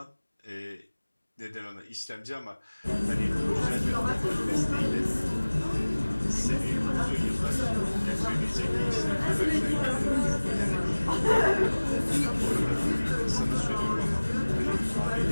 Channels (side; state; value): both; inverted; correlation -1.00